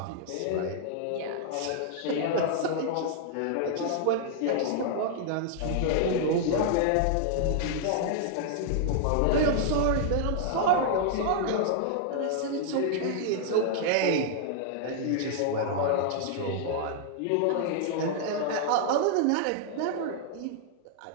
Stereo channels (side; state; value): both; different; correlation -0.01